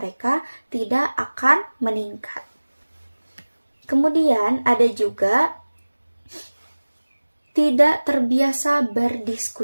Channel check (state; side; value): inverted; both; correlation -1.00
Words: tidak akan meningkat. Kemudian ada juga tidak terbiasa